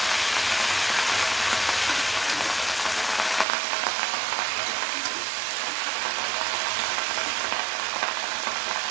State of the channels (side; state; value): left; drops out; at 3.5 s